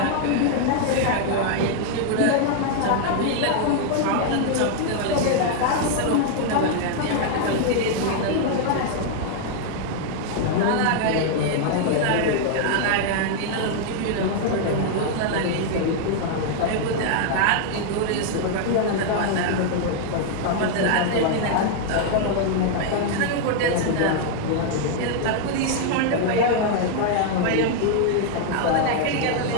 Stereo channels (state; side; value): different; both; correlation -0.01